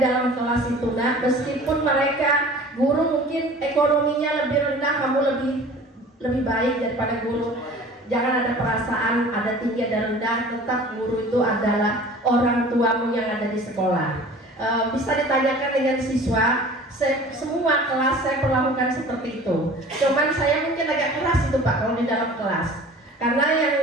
kelas itu, nah, meskipun mereka guru mungkin ekonominya lebih rendah, kamu lebih baik daripada guru. Jangan ada perasaan ada tinggi ada rendah, tetap guru itu adalah orang tuamu yang ada di sekolah. Bisa ditanyakan dengan siswa, semua kelas saya perlakukan seperti itu. Cuman saya mungkin agak keras itu Pak kalau di dalam kelas,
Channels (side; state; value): both; normal; correlation 0.44